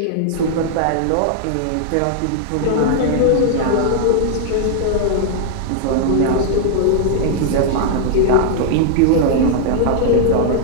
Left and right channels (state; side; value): different; both; correlation -0.01